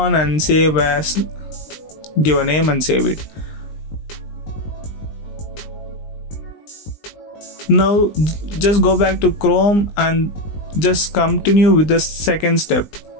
and save as, give a name and save it. Now just go back to Chrome and just continue with the second step,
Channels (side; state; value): right; late; 20 ms